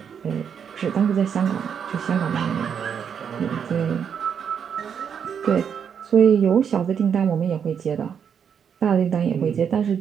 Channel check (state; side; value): quieter; left; 7.5 dB